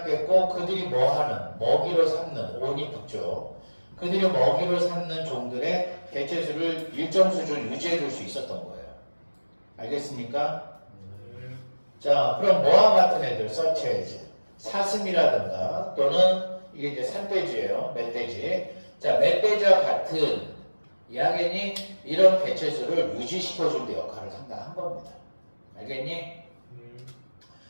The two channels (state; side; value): inverted; both; correlation -1.00